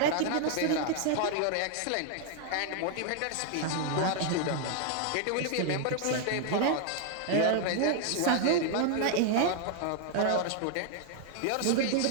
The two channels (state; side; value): different; both; correlation 0.00